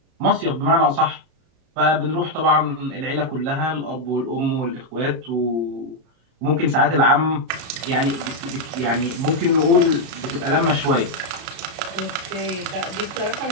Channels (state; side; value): late; left; 32 ms